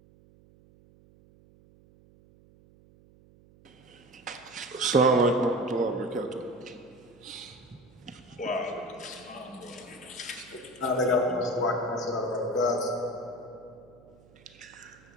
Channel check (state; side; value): noise; right; hum, 26 dB below the sound